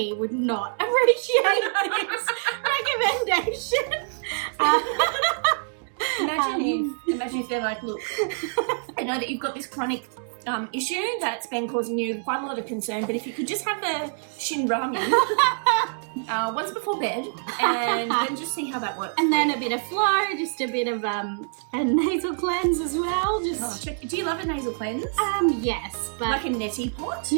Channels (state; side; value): silent; left; digital silence